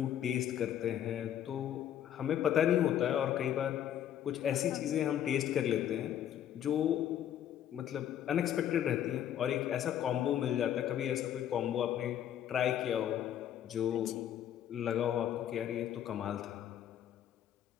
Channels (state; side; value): quieter; right; 10.5 dB